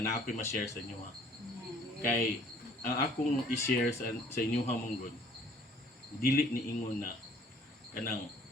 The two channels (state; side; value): normal; both; correlation 0.56